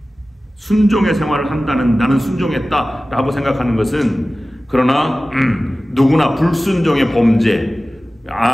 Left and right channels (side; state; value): both; normal; correlation 0.96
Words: 순종의 생활을 한다는, 나는 순종했다 라고 생각하는 것은, 그러나 누구나 불순종의 범죄